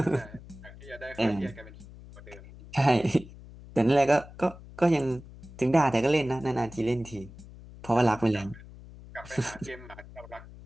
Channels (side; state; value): left; noise; hum, 17 dB below the sound